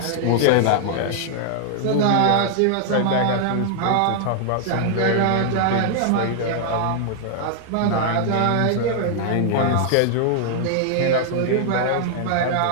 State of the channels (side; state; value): both; different; correlation 0.00